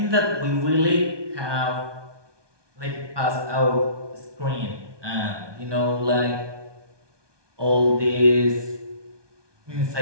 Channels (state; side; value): late; left; 1.2 ms